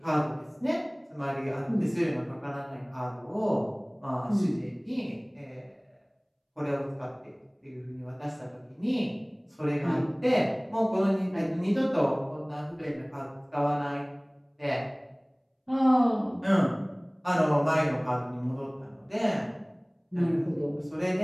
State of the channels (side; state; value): both; identical; correlation 1.00